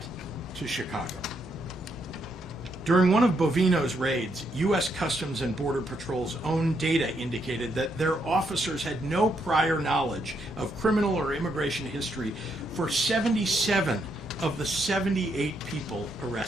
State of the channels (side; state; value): both; normal; correlation 0.77